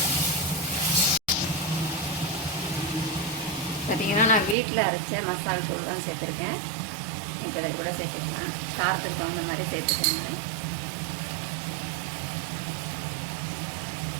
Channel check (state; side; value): drops out; left; at 4.5 s